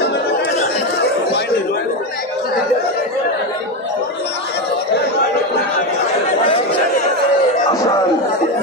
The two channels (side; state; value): both; normal; correlation 0.13